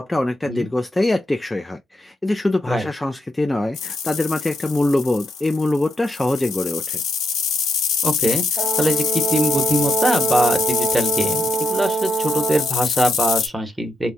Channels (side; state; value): both; normal; correlation 0.79